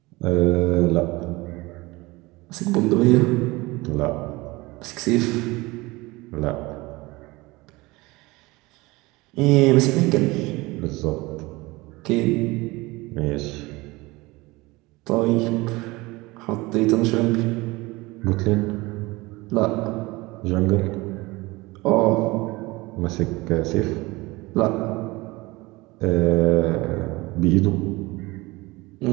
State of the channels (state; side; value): quieter; left; 22.0 dB